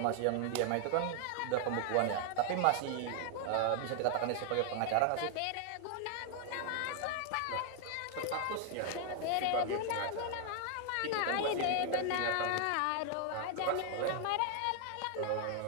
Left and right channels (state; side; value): different; both; correlation 0.00